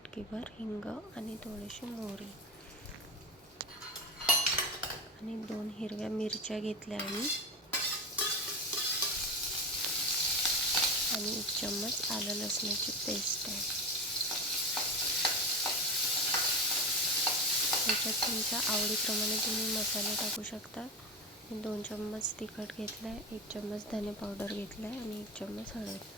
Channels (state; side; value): normal; both; correlation 0.22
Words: हिंग आणि थोडीशी मोहरी, आणि 2 हिरव्या मिरच्या घेतल्या मी, आणि 1 चम्मच आलं लसणाची पेस्ट आहे। त्याच्यात तुमच्या आवडीप्रमाणे तुम्ही मसाले टाकू शकता। 2 चम्मच तिखट घेतलं आहे, 1 चम्मच धने पावडर घेतलं आहे आणि 1 चम्मच